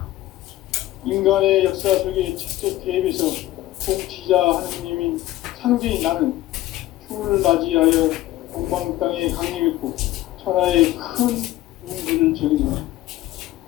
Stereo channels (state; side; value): quieter; right; 15.7 dB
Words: 인간의 역사 속에 직접 개입해서 통치자 하느님인 상제인 나는 추운을 맞이하여 동방 땅에 강림했고 천하의 큰 운수를 전했다.